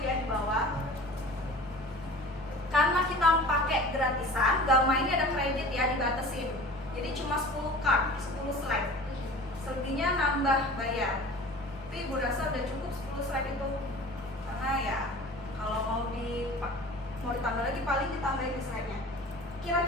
ya di bawah. Karena kita pakai gratisan, Gamma ini ada kredit ya, dibatasin. Jadi cuma 10 card, 10 slide. Selebihnya nambah bayar. Tapi Ibu rasa udah cukup 10 slide itu. Karena ya kalau mau ditambah lagi paling ditambahin slide-nya.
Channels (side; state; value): both; normal; correlation 0.41